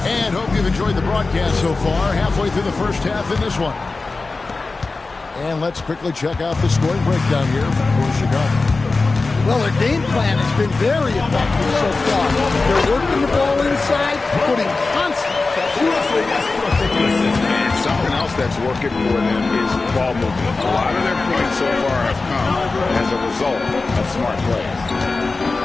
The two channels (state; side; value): quieter; right; 3.7 dB